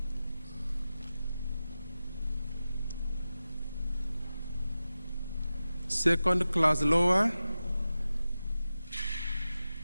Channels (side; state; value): both; inverted; correlation -0.94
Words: Second class lower,